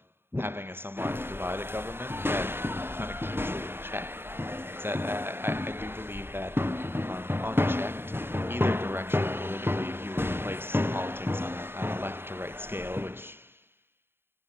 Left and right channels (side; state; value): left; late; 0.11 ms